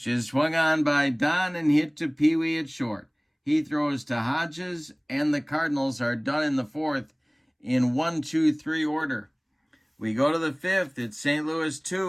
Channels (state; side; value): identical; both; correlation 1.00